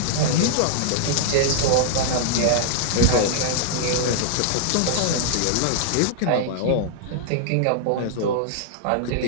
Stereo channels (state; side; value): different; both; correlation -0.01